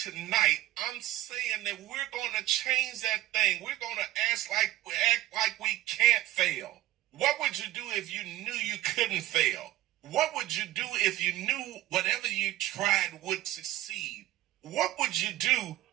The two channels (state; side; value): quieter; left; 15.4 dB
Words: I'm saying that we're going to change that thing. We're going to act like we can't fail. What would you do if you knew you couldn't fail? What would you do if you knew whatever you tried would succeed? What would you do